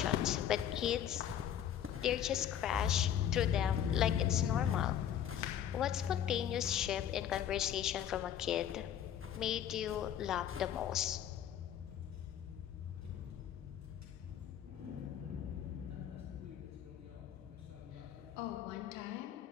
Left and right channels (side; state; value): right; quieter; 9.9 dB